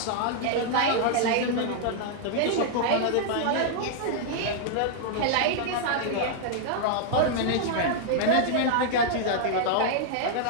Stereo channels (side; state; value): both; different; correlation -0.01